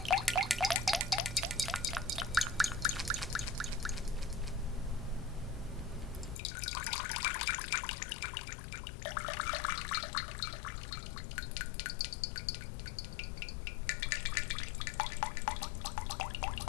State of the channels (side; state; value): right; drops out; at 6.4 s